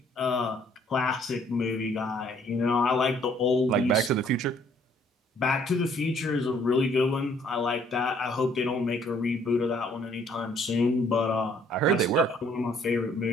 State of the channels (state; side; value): normal; both; correlation 0.62